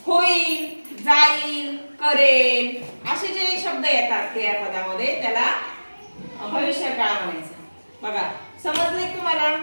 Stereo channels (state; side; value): inverted; both; correlation -1.00